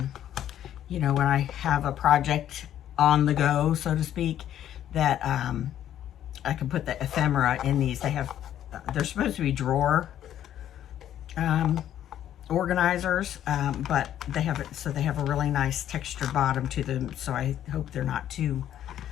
you know, when I have a project on the go, so to speak, that I can put the ephemera in these. They're supposed to be drawer organizers, but they have it, so they have a really nice textured bottom to them, so I hope they're not too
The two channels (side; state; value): right; quieter; 11.1 dB